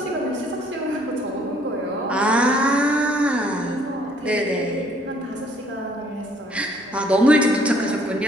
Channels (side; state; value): both; normal; correlation 0.62